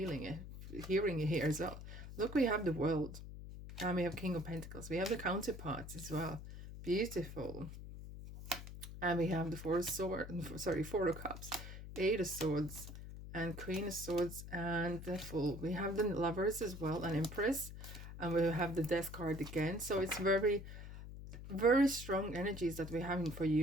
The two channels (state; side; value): noise; left; hum, 11 dB below the sound